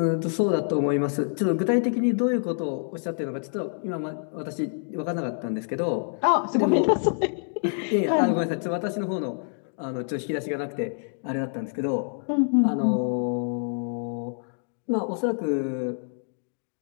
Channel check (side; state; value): right; silent; digital silence